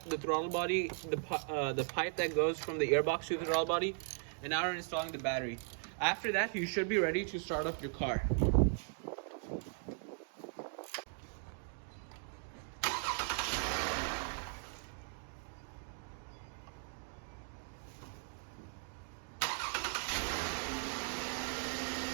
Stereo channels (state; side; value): silent; left; 52 dB below the other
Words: the throttle body, the pipe that goes from the airbox to the throttle body, and now we're installing the battery. After that, you should be ready to start up your car.